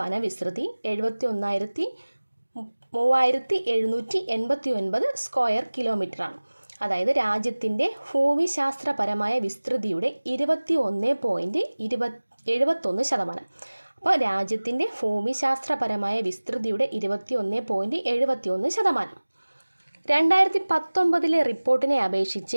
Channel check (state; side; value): inverted; both; correlation -1.00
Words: വനവിസ്തൃതി 71,3789 സ്ക്വയർ കിലോമീറ്ററാണ്. അതായത് രാജ്യത്തിൻ്റെ ഭൂമിശാസ്ത്രപരമായ വിസ്തൃതിയുടെ 21.71%. അപ്പോൾ രാജ്യത്തിൻ്റെ ഭൂമിശാസ്ത്രപരമായ വിസ്തൃതിയുടെ 21.71%. 2019 റിപ്പോർട്ടിനെ അപേക്ഷിച്ച്